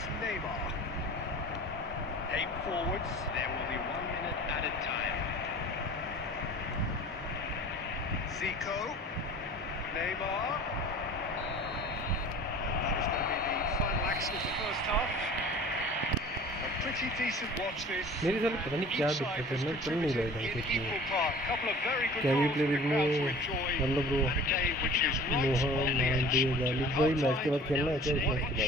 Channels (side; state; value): both; normal; correlation 0.44